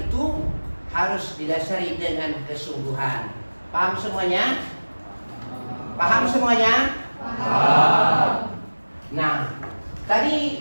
harus didasari dengan kesungguhan. Paham semuanya? Paham semuanya? Paham. Nah, tadi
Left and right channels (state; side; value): inverted; both; correlation -1.00